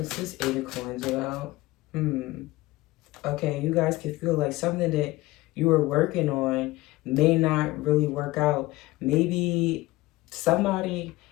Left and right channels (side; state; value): right; quieter; 19.3 dB